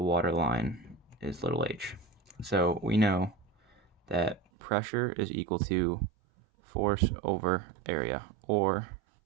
water line is little h. So we know that pressure is equal to force over area, or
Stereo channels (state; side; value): drops out; left; at 4.4 s